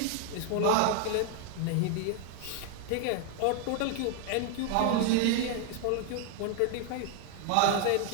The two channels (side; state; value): both; different; correlation 0.00